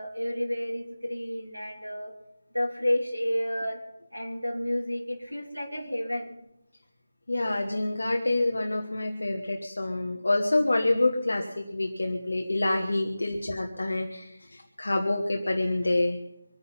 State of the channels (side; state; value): both; inverted; correlation -0.98